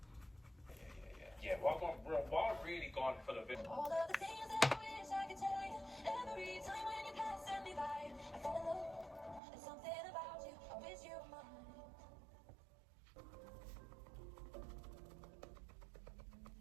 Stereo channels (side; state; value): left; drops out; at 9.4 s